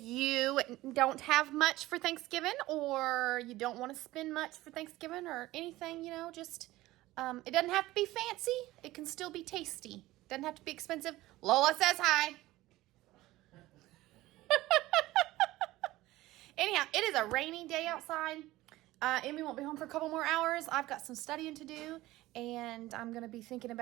don't have much for Thanksgiving, or you don't want to spend much for Thanksgiving or anything, you know, just, it doesn't have to be fancy. It can still be tasty. Doesn't have to be expensive. Lola says hi. Anyhow, it is a rainy day outside. Emmy won't be home for a couple more hours. I've got some studying to do, and I'm going to be thinking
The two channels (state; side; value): quieter; left; 17.5 dB